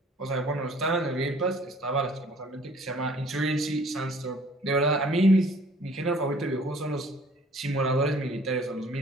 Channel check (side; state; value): both; normal; correlation 0.54